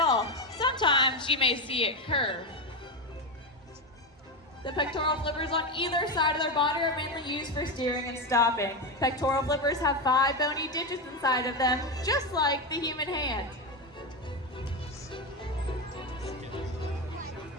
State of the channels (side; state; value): both; normal; correlation 0.13